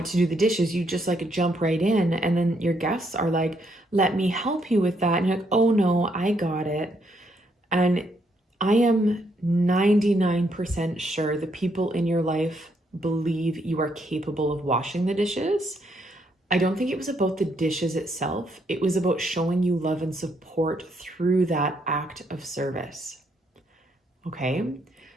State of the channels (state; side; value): normal; both; correlation 0.74